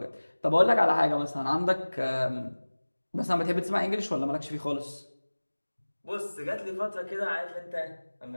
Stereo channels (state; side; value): inverted; both; correlation -1.00